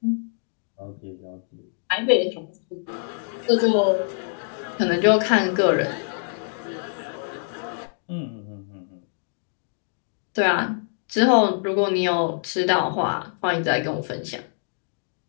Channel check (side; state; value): right; silent; digital silence